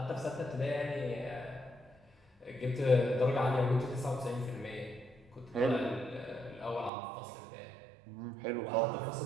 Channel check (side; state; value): left; drops out; at 6.9 s